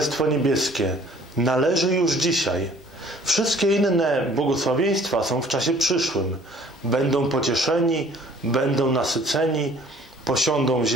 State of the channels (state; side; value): normal; both; correlation 0.54